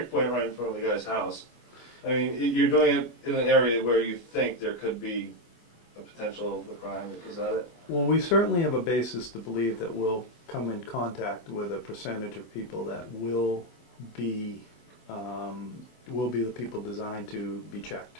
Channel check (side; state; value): right; late; 24 ms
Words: right in front of the guy's house. I mean, you're doing it in an area where you think there could be a potential of a crime. Is that it? Well, we certainly have a basis to believe that we'll come in contact with a percentage of people that will be the people designed to be checked.